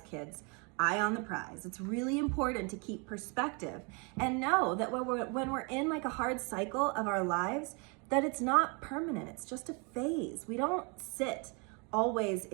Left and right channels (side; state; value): left; quieter; 32.8 dB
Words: kids. Eye on the prize. It's really important to keep perspective and know that when we're in like a hard cycle of our lives, that it's not permanent. It's just a phase. We don't sit always